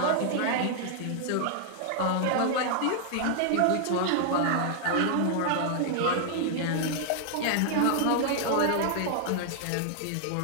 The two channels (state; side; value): different; both; correlation 0.00